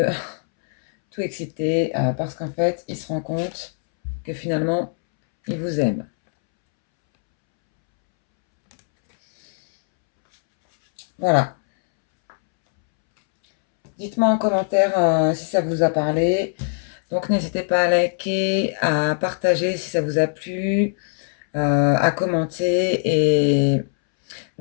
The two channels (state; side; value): silent; right; 65 dB below the other